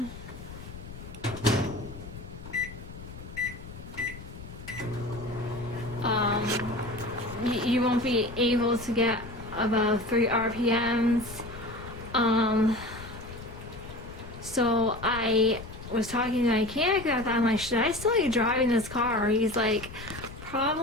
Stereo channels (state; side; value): noise; left; rumble, 13 dB below the sound